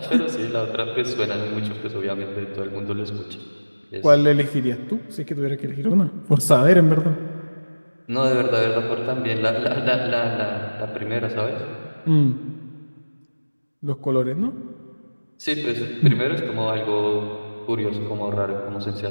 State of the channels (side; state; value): both; inverted; correlation -1.00